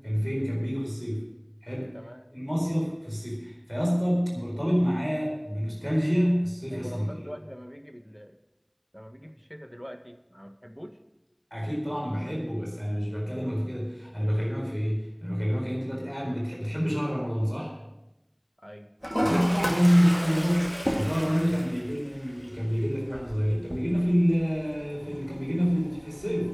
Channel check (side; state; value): both; identical; correlation 1.00